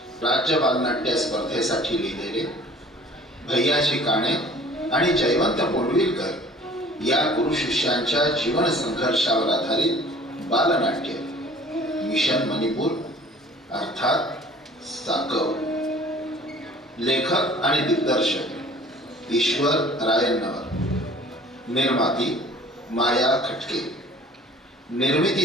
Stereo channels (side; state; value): both; normal; correlation 0.49